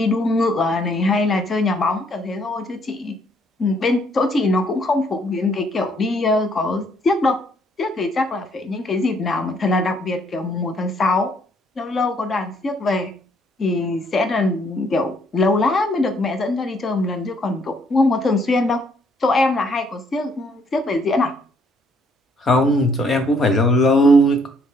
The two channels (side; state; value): both; normal; correlation 0.67